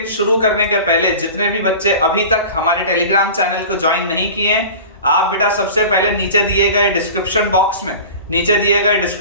शुरू करने के पहले जितने भी बच्चे अभी तक हमारे टेलीग्राम चैनल को ज्वाइन नहीं किए हैं, आप बेटा सबसे पहले नीचे दिए गए डिस्क्रिप्शन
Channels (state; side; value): inverted; both; correlation -0.37